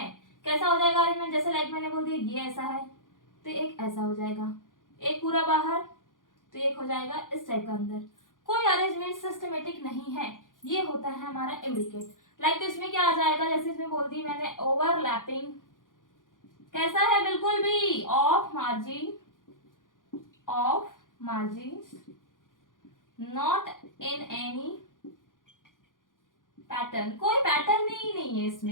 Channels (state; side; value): late; right; 0.89 ms